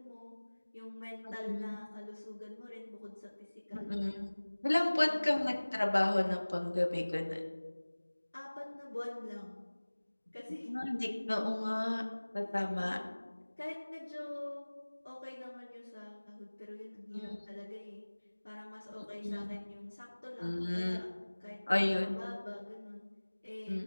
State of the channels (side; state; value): both; inverted; correlation -1.00